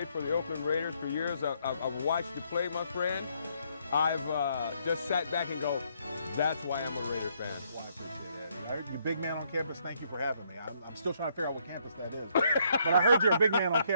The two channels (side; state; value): both; inverted; correlation -0.71